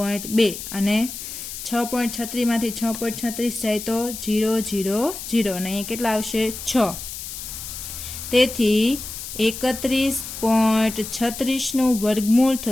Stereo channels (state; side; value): noise; left; hiss, 9 dB below the sound